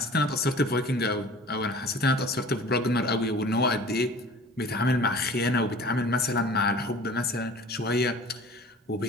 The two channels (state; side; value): normal; both; correlation 0.44